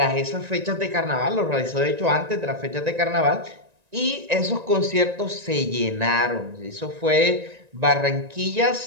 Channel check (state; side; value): late; left; 1.9 ms